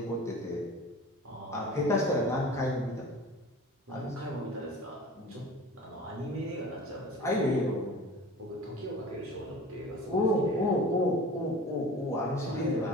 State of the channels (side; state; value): both; normal; correlation 0.40